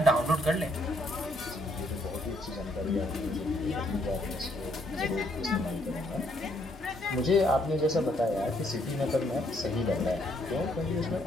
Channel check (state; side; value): normal; both; correlation 0.70